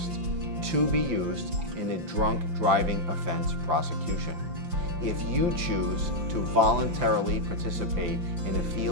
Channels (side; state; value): left; late; 5.8 ms